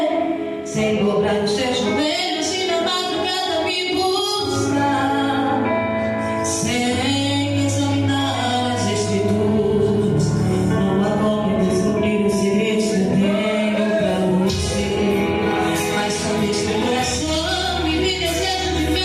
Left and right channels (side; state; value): both; identical; correlation 1.00